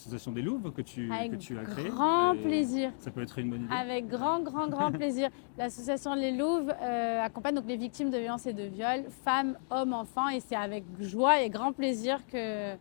des Louves que tu as créée. Avec grand plaisir. Ça peut être une bonne idée. Avec grand plaisir. L'association Les Louves accompagne donc les victimes de violences et de viols, femmes, hommes, enfants, et c'est avec joie et grand plaisir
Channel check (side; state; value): right; silent; digital silence